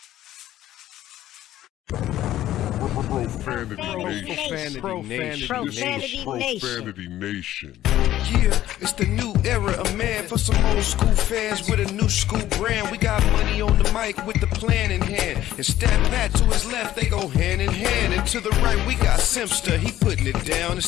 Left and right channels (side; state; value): right; quieter; 13.4 dB